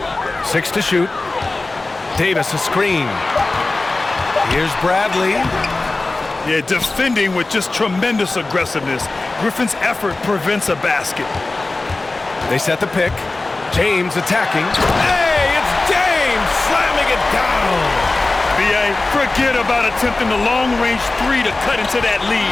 Six to shoot. Davis a screen. Here's Bradley. Yeah, defending with just tremendous aggressiveness. Griffin's effort prevents a basket. They set the pick. James attacking. Hey, it's James slamming it down. B.A., forget about attempting the long-range 3 to cut into that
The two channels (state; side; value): quieter; right; 3.2 dB